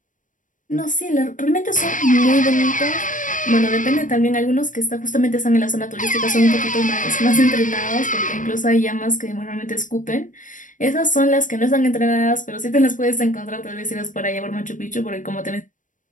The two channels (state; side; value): late; right; 0.38 ms